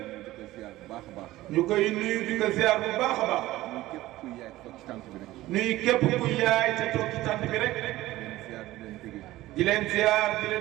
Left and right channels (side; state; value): left; quieter; 16.6 dB